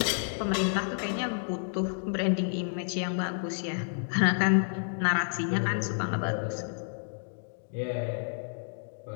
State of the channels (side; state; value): right; silent; digital silence